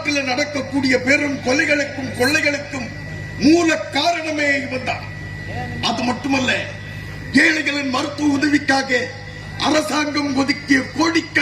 நடக்கக்கூடிய பெரும் கொலைகளுக்கும் கொள்ளைகளுக்கும் மூல காரணமே இவன் தான். அது மட்டுமல்ல, ஏழைகளின் மருத்துவ உதவிக்காக அரசாங்கம் ஒதுக்கிய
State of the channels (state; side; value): identical; both; correlation 1.00